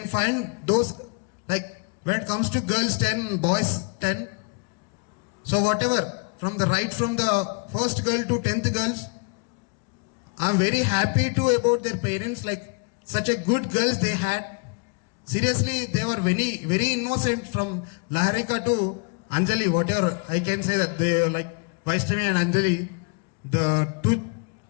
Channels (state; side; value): quieter; right; 35.4 dB